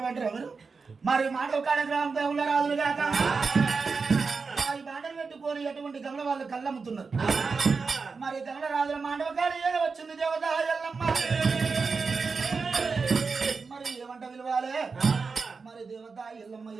మీరు మరి మాండవ కాడ గ్రామంలో ఉన్న రాజులు కాక ఈ బాండలు పెట్టుకొని ఎటువంటి గమల వాళ్ళు కళ్ళమ్ముతున్నారు మరి గమల రాజుల మాండవ కాడ ఏదో వచ్చింది దేవత ఎల్లమ్మ మరి ఏమంట విలువాలే మరి దేవత ఎల్లమ్మ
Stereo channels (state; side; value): quieter; left; 4.8 dB